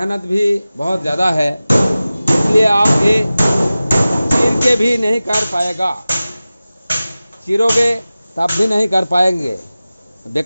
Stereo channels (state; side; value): inverted; both; correlation -0.96